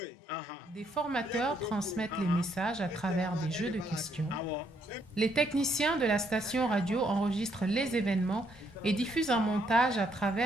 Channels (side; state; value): both; normal; correlation 0.72